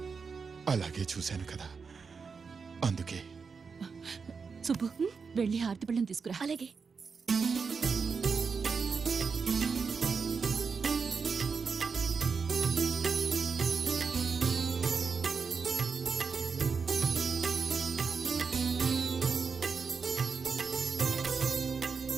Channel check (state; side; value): quieter; left; 5.4 dB